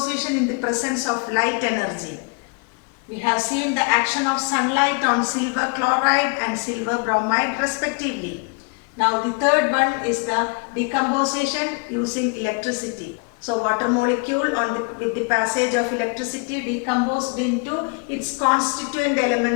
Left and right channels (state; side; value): quieter; right; 34.3 dB